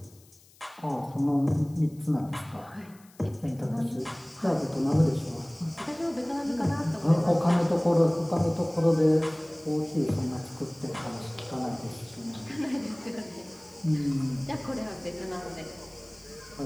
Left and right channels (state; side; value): noise; left; hiss, 27 dB below the sound